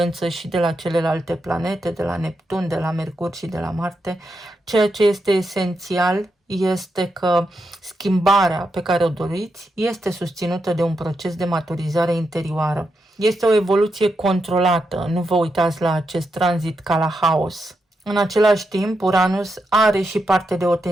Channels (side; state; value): both; normal; correlation 0.84